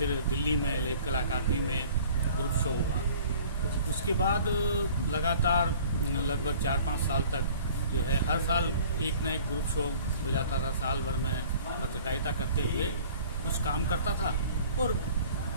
दिल्ली में लेख कला अकादमी में ग्रुप शो हुआ। उसके बाद लगातार लगभग 4-5 साल तक जो है हर साल एक ना एक ग्रुप शो हो जाता था। साल भर में पत्रकारिता करते हुए कुछ काम करता था और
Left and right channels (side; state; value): both; inverted; correlation -0.49